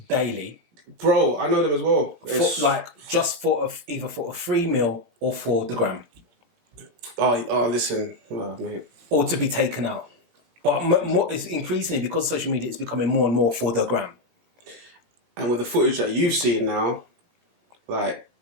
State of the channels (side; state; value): left; late; 17 ms